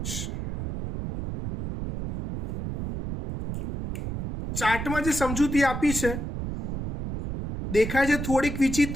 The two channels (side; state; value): right; noise; rumble, 5 dB below the sound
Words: ચાર્ટમાં જે સમજૂતી આપી છે દેખાય છે થોડીક